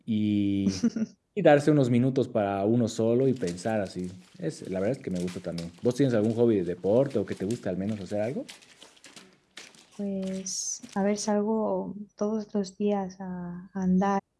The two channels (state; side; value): identical; both; correlation 1.00